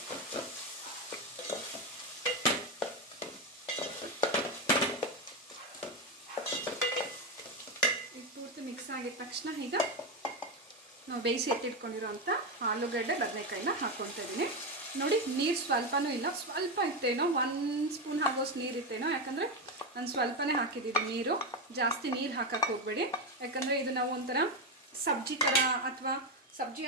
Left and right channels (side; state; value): both; normal; correlation 0.11